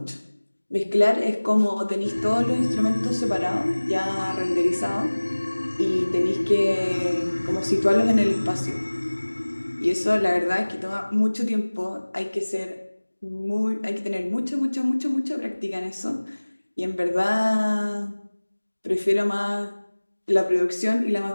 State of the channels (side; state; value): both; inverted; correlation -1.00